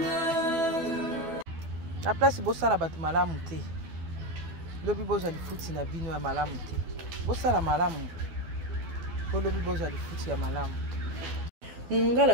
La place est bossa la batu malamu te. Lobi boza li futi na bino ya malamu te. Bossa la malamu. Po lobi boza li futi ya malamu.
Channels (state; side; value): late; left; 12 ms